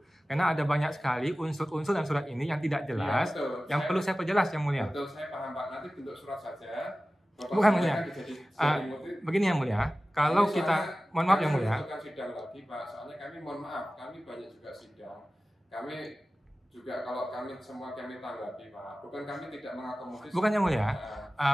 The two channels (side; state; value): both; normal; correlation 0.96